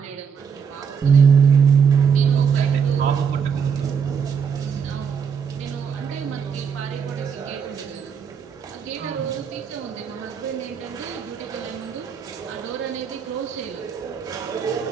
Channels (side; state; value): left; quieter; 6.8 dB